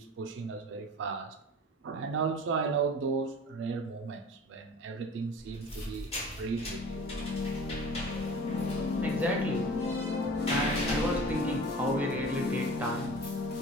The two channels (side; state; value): both; normal; correlation 0.41